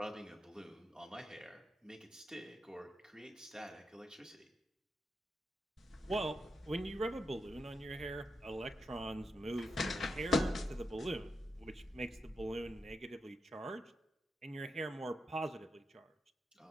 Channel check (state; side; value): normal; both; correlation 0.86